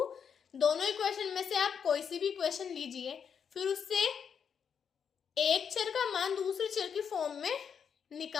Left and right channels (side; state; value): right; quieter; 7.2 dB